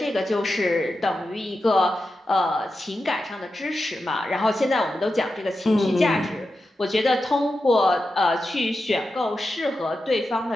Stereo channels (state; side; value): normal; both; correlation 0.90